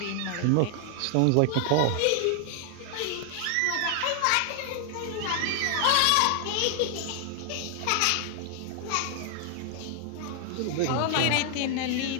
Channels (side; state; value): both; different; correlation 0.00